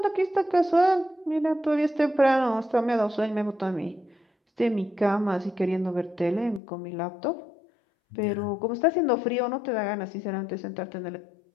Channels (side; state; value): right; drops out; at 6.6 s